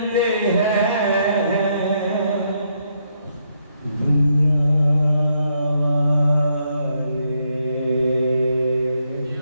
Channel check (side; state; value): both; inverted; correlation -0.75